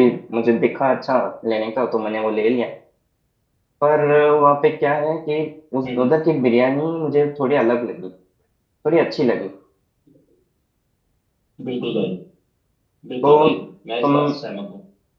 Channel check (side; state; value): both; identical; correlation 1.00